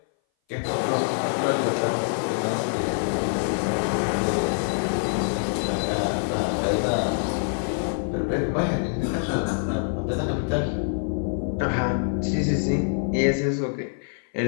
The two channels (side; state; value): right; silent; 58 dB below the other